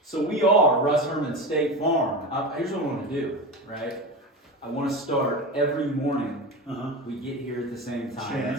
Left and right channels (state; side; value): normal; both; correlation 0.24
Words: So we are Russ Herman State Farm. Here's what I want to do, right? I want to start every morning. We get here at the same